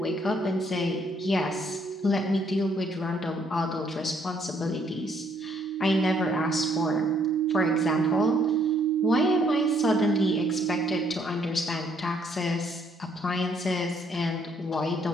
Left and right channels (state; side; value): normal; both; correlation 0.68